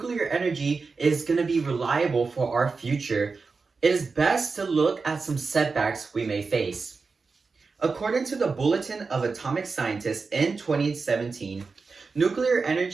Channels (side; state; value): left; quieter; 4.5 dB